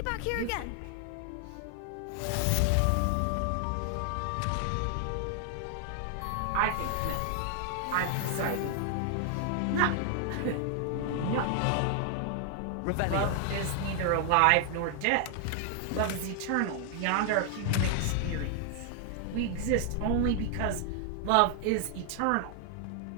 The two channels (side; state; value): both; different; correlation 0.00